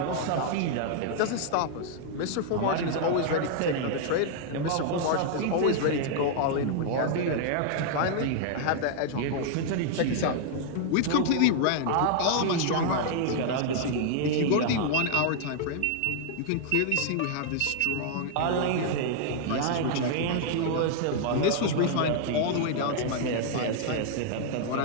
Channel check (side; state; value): both; different; correlation -0.01